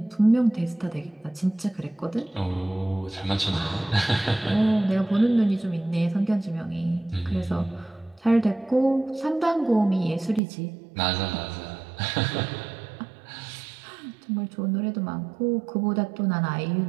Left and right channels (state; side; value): drops out; left; at 10.4 s